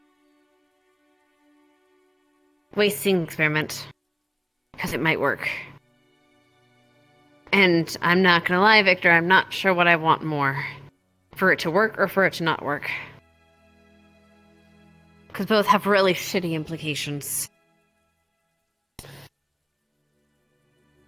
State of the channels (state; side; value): identical; both; correlation 1.00